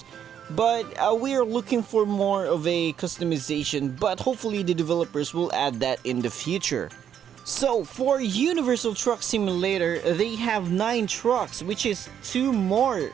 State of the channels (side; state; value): left; quieter; 9.1 dB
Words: But we are looking for more of a customization, but hopefully the developers will add that in the future. So for Universal Truck Simulator, they have 9 trucks, which is 2 more